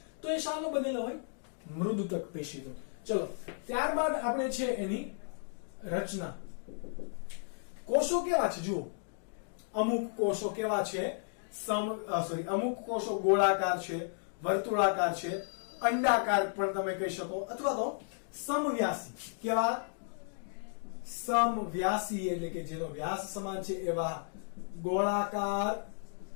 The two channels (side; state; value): right; silent; digital silence